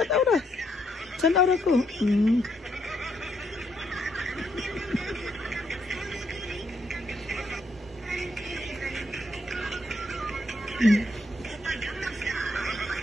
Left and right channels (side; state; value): both; normal; correlation 0.75